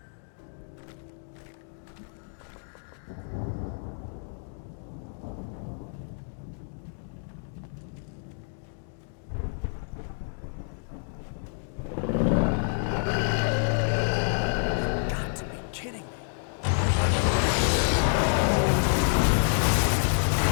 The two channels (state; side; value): silent; right; digital silence